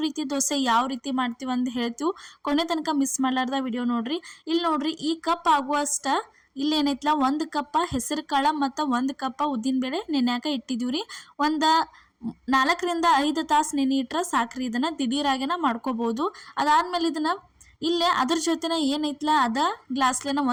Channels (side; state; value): both; identical; correlation 1.00